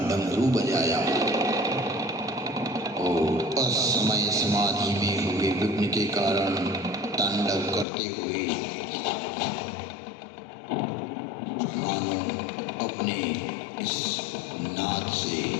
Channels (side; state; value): right; drops out; at 7.9 s